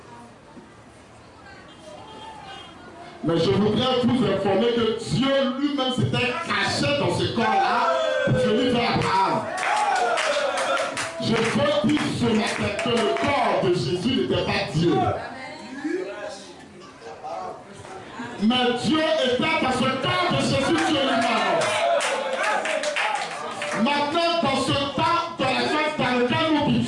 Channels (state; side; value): identical; both; correlation 1.00